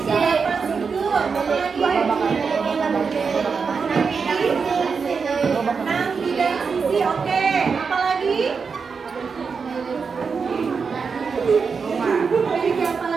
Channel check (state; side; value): quieter; left; 5.4 dB